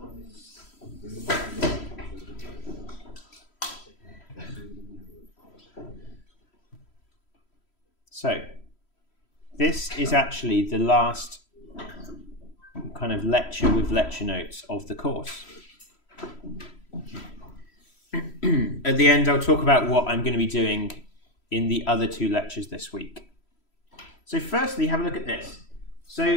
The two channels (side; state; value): right; late; 3.1 ms